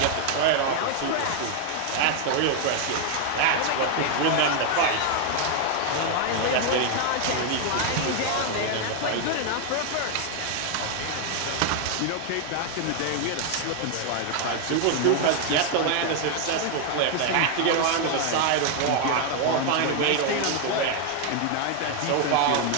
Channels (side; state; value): both; different; correlation 0.01